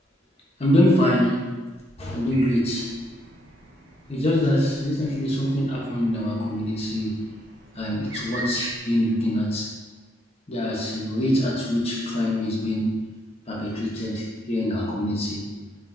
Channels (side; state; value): both; normal; correlation 0.74